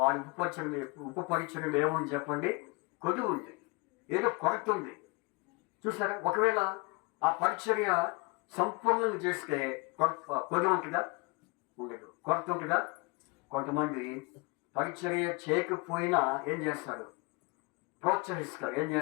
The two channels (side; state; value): right; quieter; 28.0 dB